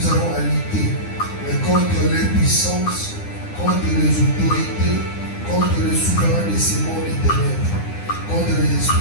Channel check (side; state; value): right; late; 9.8 ms